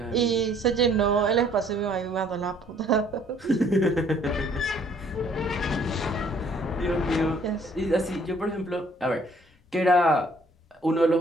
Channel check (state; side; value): normal; both; correlation 0.60